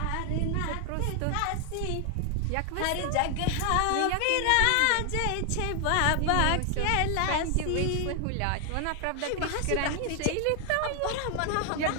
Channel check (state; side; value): different; both; correlation 0.00